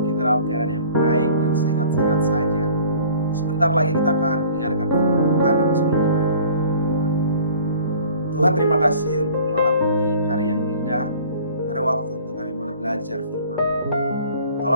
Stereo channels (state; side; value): inverted; both; correlation -0.49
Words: kita dalam keadaan yang baik dan sehat-sehat saja. Sebentar lagi kita akan mendengarkan firman Tuhan, namun sebelumnya mari kita berdoa. Tuhan, terima kasih untuk malam ini, hari yang indah, ada waktu untuk kami boleh belajar firman-Mu.